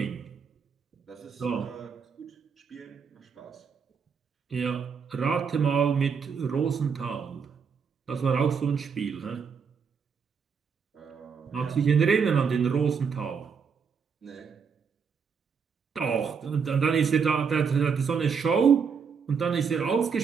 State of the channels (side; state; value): left; quieter; 6.2 dB